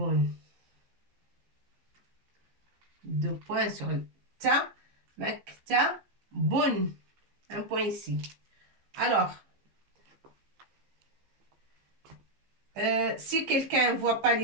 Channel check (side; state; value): left; late; 15 ms